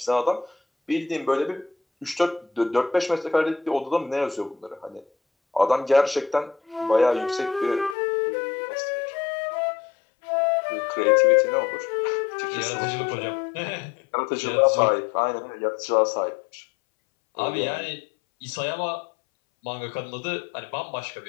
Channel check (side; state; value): right; drops out; at 8.0 s